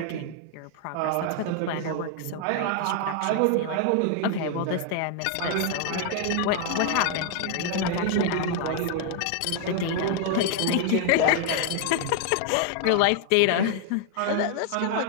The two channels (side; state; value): both; different; correlation 0.00